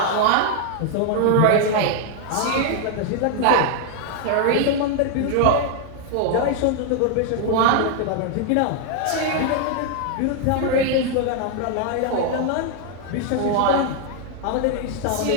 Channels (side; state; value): both; different; correlation 0.00